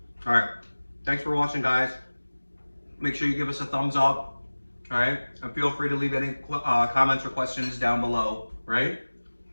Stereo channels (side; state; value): both; inverted; correlation -1.00